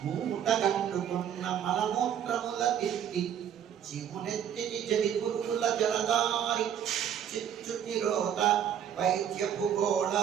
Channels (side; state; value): left; quieter; 9.2 dB